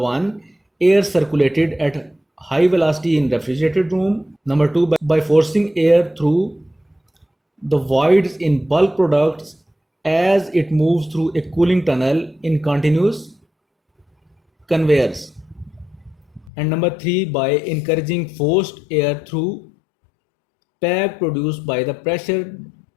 air circulated at high velocity in refrigerated room. Number 2, by forcing air through the voids in bulk products as it moves through a cooling tunnel in continuous conveyors. And number 3, by encouraging forced air through bag produced by the pressure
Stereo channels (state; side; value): drops out; right; at 16.5 s